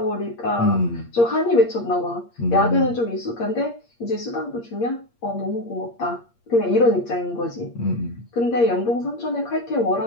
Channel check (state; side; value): late; right; 8.6 ms